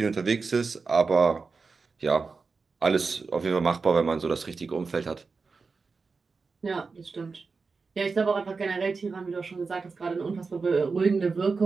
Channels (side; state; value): left; quieter; 4.5 dB